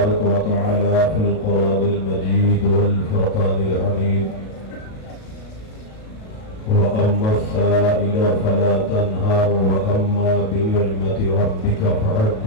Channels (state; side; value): late; right; 37 ms